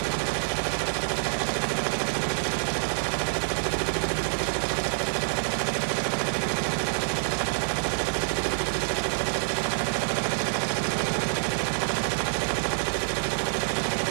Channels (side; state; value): left; silent; 57 dB below the other